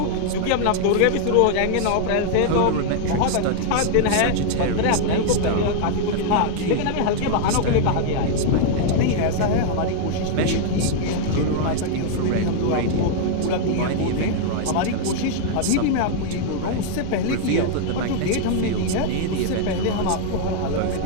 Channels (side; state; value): both; different; correlation 0.00